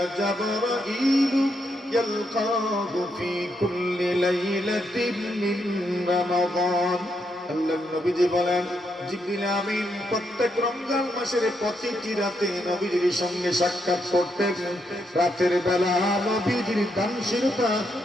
جبرائيل يلقاه في كل ليلة من رمضان। আল্লাহর নবীজি বলেন, জিবরিল আমিন প্রত্যেক রমজান মাসের প্রতিটি রাতে নবীজির সঙ্গে সাক্ষাৎ করতেন। রাতের বেলা নবীজির দানশীলতা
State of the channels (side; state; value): both; normal; correlation 0.79